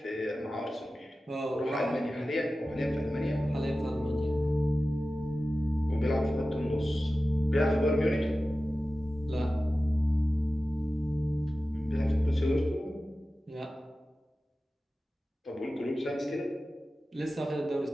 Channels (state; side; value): normal; both; correlation 0.95